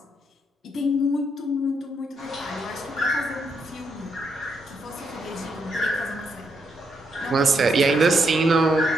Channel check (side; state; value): both; normal; correlation 0.78